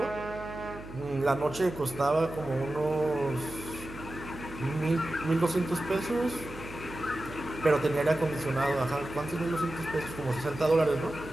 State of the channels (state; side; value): noise; right; hum, 14 dB below the sound